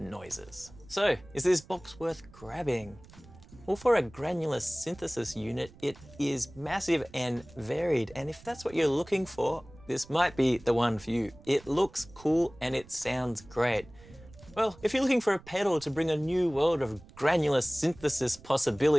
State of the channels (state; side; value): noise; right; rumble, 22 dB below the sound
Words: So, is this box worth grabbing? Well, for a granular synthesis unit, it is massive and varied, and if that's what you're looking for, this might be the one for you. It looks cool and it sounds great. Well, if you're looking for a pedal to bring a new world of granular synthesis